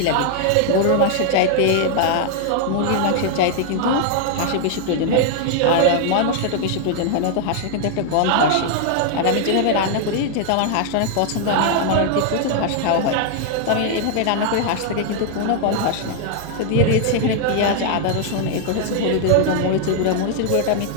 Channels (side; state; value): both; different; correlation 0.00